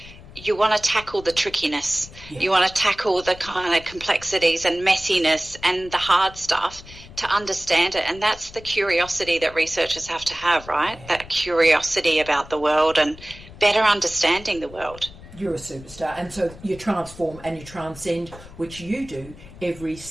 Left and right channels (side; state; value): left; noise; rumble, 18 dB below the sound